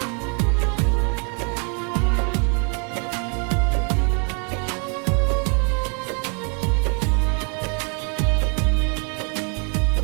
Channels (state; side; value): quieter; left; 37.2 dB